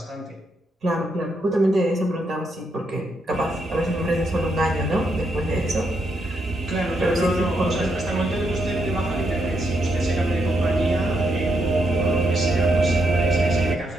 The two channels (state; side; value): normal; both; correlation 0.79